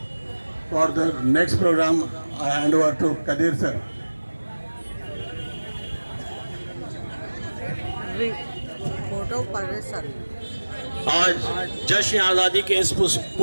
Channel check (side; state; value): both; inverted; correlation -1.00